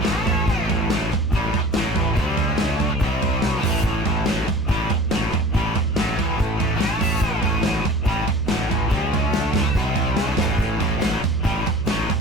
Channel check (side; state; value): left; noise; hum, 8 dB below the sound